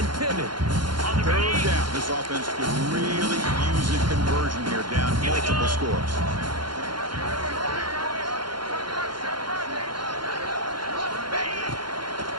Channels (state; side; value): late; left; 0.72 ms